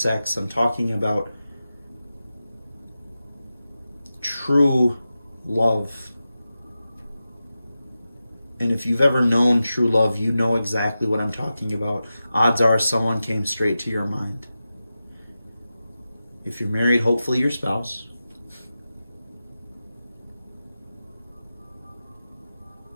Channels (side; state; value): both; inverted; correlation -0.93